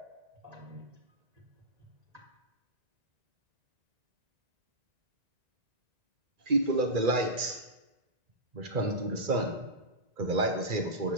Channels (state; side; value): late; left; 2.4 ms